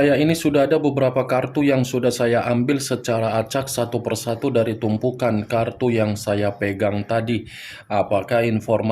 ini sudah ada beberapa kartu yang sudah saya ambil secara acak satu persatu dari tumpukan kartu yang saya pegang tadi. Apakah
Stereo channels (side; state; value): both; identical; correlation 1.00